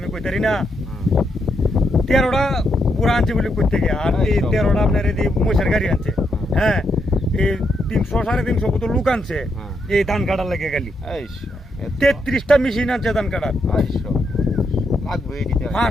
কইতারি না। 13টা পুরা আনছে বলে করতে গিয়ে, আর এই 13টা আপনার এই মহিষের গাড়ি আনছে। হ্যাঁ, এই 300 350 কত লোক আনছে এই ধান কাটার লেগে গেলি। 33টা মেশিন আনছে ধান কাটার,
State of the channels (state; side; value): normal; both; correlation 0.80